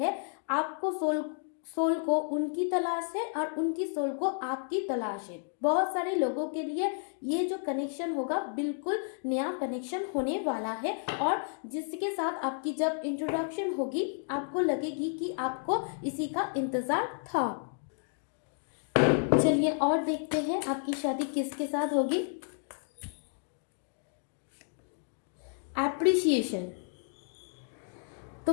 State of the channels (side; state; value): right; silent; 57 dB below the other